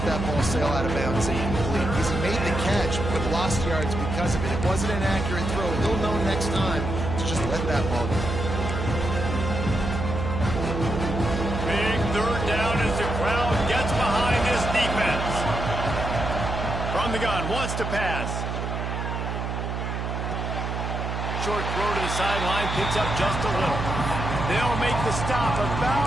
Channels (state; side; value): noise; right; hum, 3 dB below the sound